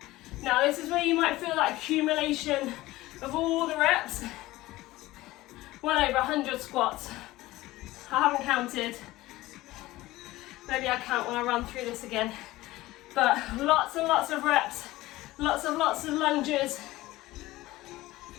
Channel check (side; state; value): right; quieter; 17.8 dB